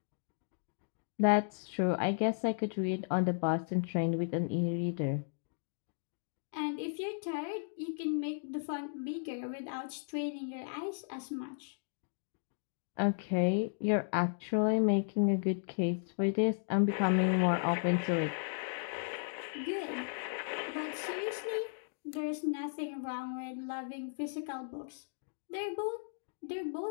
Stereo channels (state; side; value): silent; right; digital silence